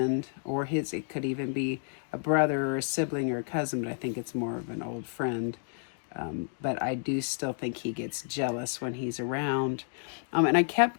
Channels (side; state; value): right; silent; 57 dB below the other